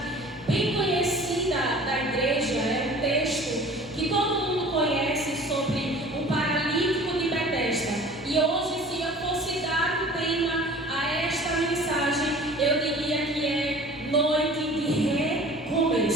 bem conhecida da igreja, é um texto que todo mundo conhece sobre o paralítico de Betesda. E hoje, se eu fosse dar um tema a esta mensagem, eu diria que é noite de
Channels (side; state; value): both; normal; correlation 0.45